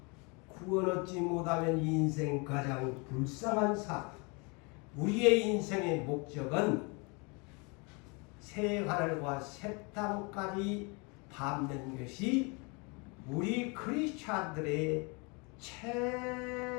구원 얻지 못하면 인생 가장 불쌍한 삶. 우리의 인생의 목적은 새 하늘과 새 땅까지 밟는 것이 우리 크리스찬들의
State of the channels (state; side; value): quieter; right; 31.0 dB